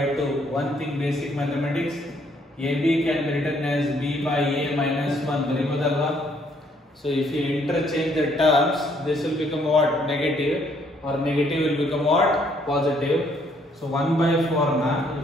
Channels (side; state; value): both; normal; correlation 0.67